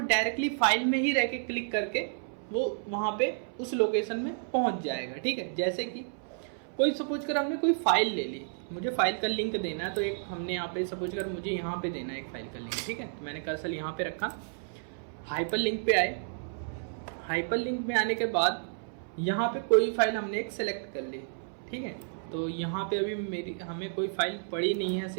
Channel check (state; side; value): silent; left; 57 dB below the other